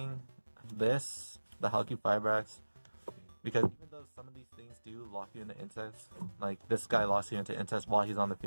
this, the Halki Fibrax, because even though some of these things do lock you into insects, like this guy locks you into insects while he's on the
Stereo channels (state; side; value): inverted; both; correlation -1.00